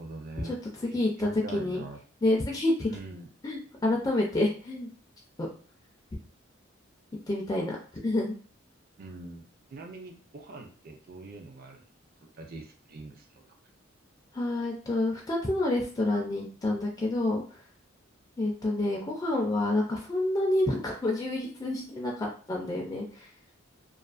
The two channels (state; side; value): normal; both; correlation 0.77